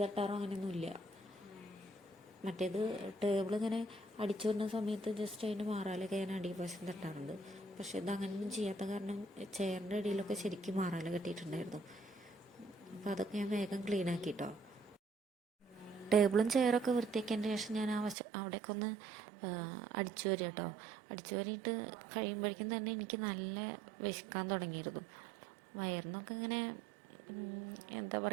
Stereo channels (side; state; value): left; drops out; at 18.2 s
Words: തട്ടാറോ അങ്ങനെയൊന്നുമില്ല. മറ്റേത് ടേബിൾ ഇങ്ങനെ അടിച്ചു വരുന്ന സമയത്ത് ജസ്റ്റ് അതിൻ്റെ മാറാലൊക്കെ ഞാൻ അടിവശം തട്ടാറുണ്ട്. പക്ഷെ ഇത് അങ്ങനെയൊന്നും ചെയ്യാത്ത കാരണം ചെയറിൻ്റെ അടിയിലൊക്കെ ശരിക്കും മാറാല കെട്ടിയിട്ടുണ്ടായിരുന്നു. അപ്പോൾ അതൊക്കെ ഞാൻ വേഗം ക്ലീൻ ആക്കിട്ടോ. ടേബിളും ചെയറൊക്കെ വൃത്തിയാക്കിയതിന് ശേഷം ഞാൻ അവിടേക്ക് ഒന്ന് അടിച്ചു വരിക കേട്ടോ. അടിച്ചു വരിയിട്ട് കഴിയുമ്പോഴേക്കും തന്നെ എനിക്ക് നല്ല വിശക്കാൻ തുടങ്ങിയിരുന്നു. വയറിനൊക്കെ ഇങ്ങനെ എന്താ